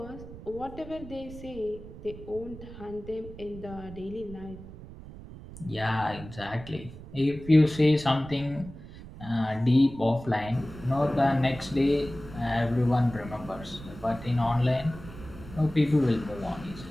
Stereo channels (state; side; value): noise; right; rumble, 15 dB below the sound